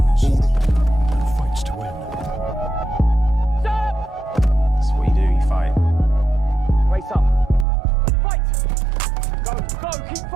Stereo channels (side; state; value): left; drops out; at 7.7 s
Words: and fights to win. Stop! That's what you do, you fight. Race up. Fight! Go, keep